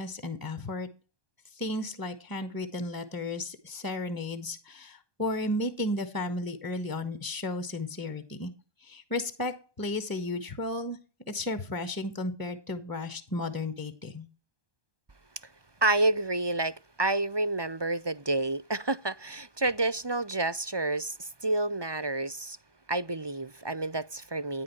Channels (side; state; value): left; late; 1.2 ms